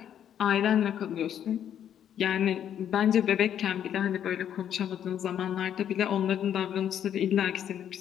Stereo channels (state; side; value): quieter; right; 9.7 dB